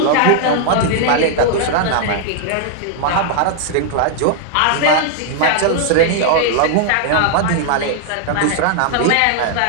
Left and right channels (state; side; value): different; both; correlation -0.01